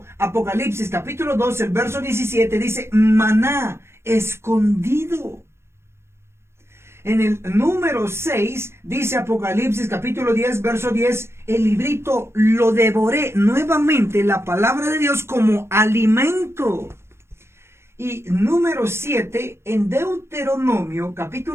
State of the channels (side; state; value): left; late; 0.12 ms